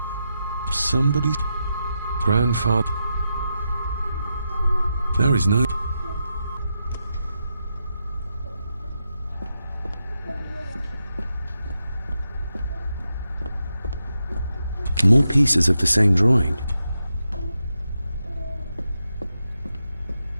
Somebody's grandfather. There is no... More pieces of the same drawing.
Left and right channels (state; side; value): inverted; both; correlation -0.86